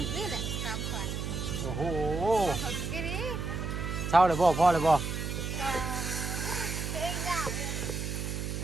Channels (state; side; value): noise; right; hum, 3 dB below the sound